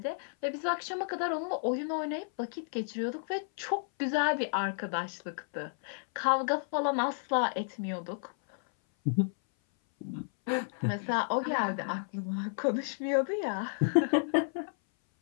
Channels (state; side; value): silent; right; 57 dB below the other